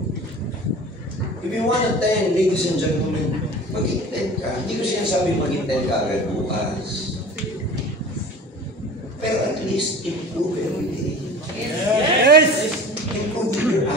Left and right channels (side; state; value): both; normal; correlation 0.39